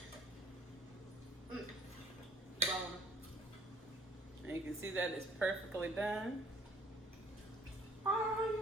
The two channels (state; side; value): normal; both; correlation 0.56